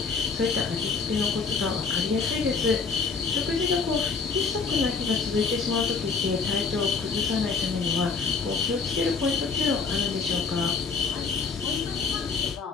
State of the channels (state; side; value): quieter; right; 5.0 dB